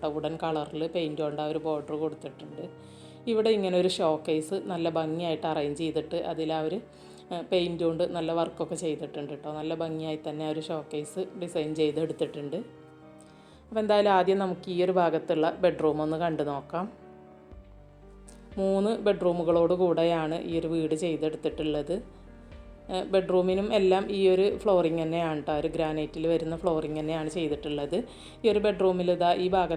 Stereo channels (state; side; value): identical; both; correlation 1.00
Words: വുഡൻ കളറിൽ പെയിൻറ് കൊണ്ട് ആ ഒരു ബോർഡർ കൊടുത്തിട്ടുണ്ട്. ഇവിടെ ഇങ്ങനെ ഒരു ഷോ കേസ് നല്ല ഭംഗിയായിട്ട് അറേഞ്ച് ചെയ്തിട്ട് അതിൽ ആ ഒരു പെയിൻറ് കൊണ്ട് നല്ല വർക്കൊക്കെ ചെയ്തിട്ടുണ്ട് കേട്ടോ. നല്ല ഭംഗിയായി തന്നെ ആ ഒരു ഷോ കേസ് ഡിസൈൻ ചെയ്തെടുത്തിട്ടുണ്ട്. അപ്പോൾ എന്തായാലും ആദ്യം നമുക്ക് ഈ ഒരു ഭാഗത്തുള്ള ബെഡ്റൂം ഒന്ന് കണ്ടു നോക്കാം. 3 ബെഡ്റൂമുകളോട് കൂടെയാണ് ഈ ഒരു വീട് ചെയ്തെടുത്തിട്ടുള്ളത്. ബെഡ്റൂമിനും എല്ലാം ഈ ഒരു ഫ്ലോറിങ് തന്നെയാണ് കേട്ടോ, ഒരു ഗ്രാനൈറ്റിൽ വരുന്ന ഫ്ലോറിങ് തന്നെയാണ് ചെയ്തിട്ടുള്ളത്. ഈ ഒരു ബെഡ്റൂമിൽ ഈ